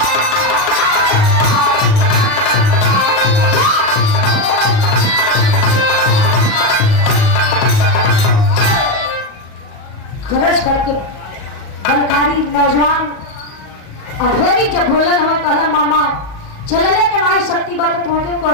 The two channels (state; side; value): late; right; 38 ms